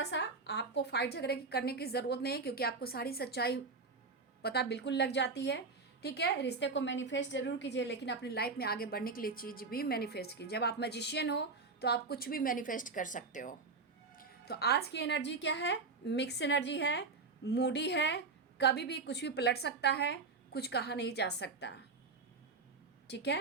सा आपको फाइट झगड़े करने की ज़रूरत नहीं है, क्योंकि आपको सारी सच्चाई पता बिल्कुल लग जाती है, ठीक है? रिश्ते को मैनिफेस्ट जरूर कीजिए, लेकिन अपनी लाइफ में आगे बढ़ने के लिए चीज़ भी मैनिफेस्ट कीजिए। जब आप मैजिशियन हो तो आप कुछ भी मैनिफेस्ट कर सकते हो। तो आज की एनर्जी क्या है? मिक्स एनर्जी है, मूडी है, कभी भी कुछ भी पलट सकता है, कुछ कहा नहीं जा सकता, ठीक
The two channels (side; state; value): left; quieter; 4.2 dB